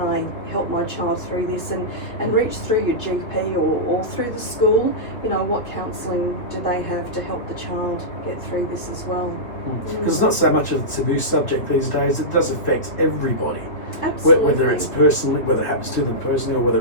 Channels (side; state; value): right; late; 2.7 ms